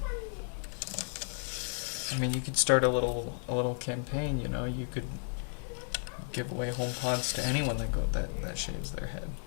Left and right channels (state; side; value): silent; right; 55 dB below the other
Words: I mean, you could start a little campaign. You know, you could give away HomePods to anyone that shaves their head.